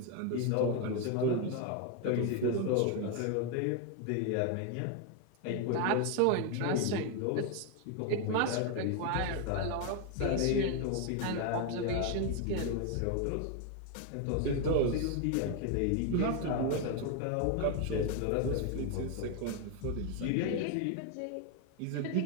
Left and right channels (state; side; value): different; both; correlation 0.01